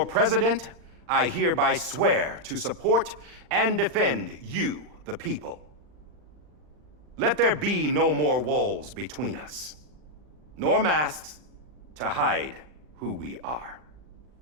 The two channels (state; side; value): late; left; 40 ms